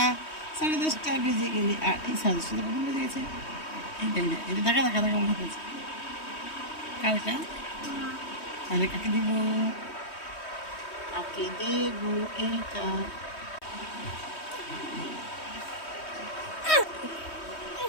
10:30 বেজে গেলে, আর এই 10:30 কখন বেজে গেছে? এইটাই না, এটা দেখা দেখা দেখা মনে হচ্ছে কারটা। তাহলে কাকে দিব? কাকে দেব এটা।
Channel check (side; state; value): right; late; 3.2 ms